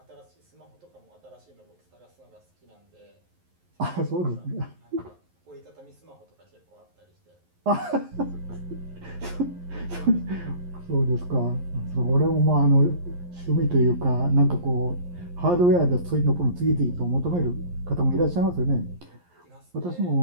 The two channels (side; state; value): left; late; 11 ms